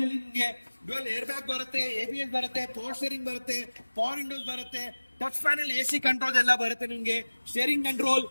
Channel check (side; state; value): both; inverted; correlation -1.00